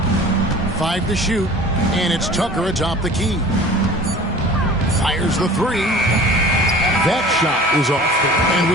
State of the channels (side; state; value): both; normal; correlation 0.43